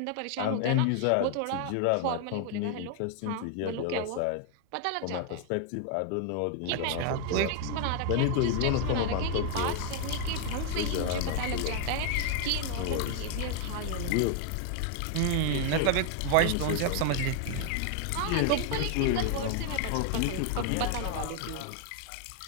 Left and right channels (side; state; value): both; different; correlation 0.00